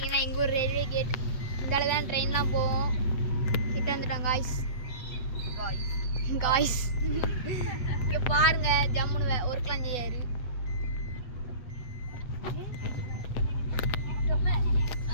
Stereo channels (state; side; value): late; right; 8.1 ms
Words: எங்கள் ஊர் ரயில்வே கேட். இந்தால தான் ட்ரெயின்லாம் போவோம். கிட்ட வந்துட்டோம் காய்ஸ். காய்ஸ் இங்கே பாருங்க ஜம்முன்னு ஒர்க்லாம் செய்யாரு.